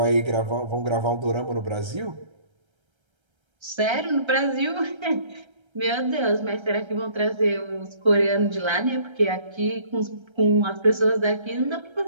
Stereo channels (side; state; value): left; late; 1.3 ms